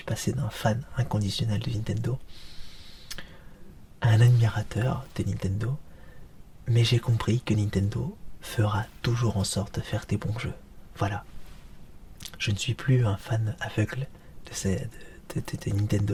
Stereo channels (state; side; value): identical; both; correlation 1.00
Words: passé d'un fan inconditionnel de Nintendo à un admirateur de Nintendo, mais j'ai compris que Nintendo fera toujours en sorte de faire des bons jeux. Voilà. Je ne suis plus un fan aveugle de